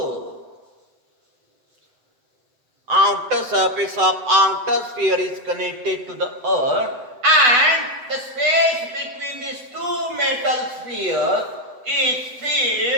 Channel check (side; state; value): left; late; 8.0 ms